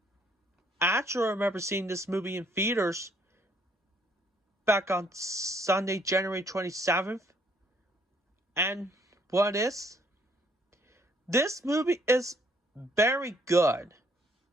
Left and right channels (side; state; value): both; normal; correlation 0.66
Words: actually remember seeing this movie in theaters back on Sunday, January 27th. And what is? This movie is very good.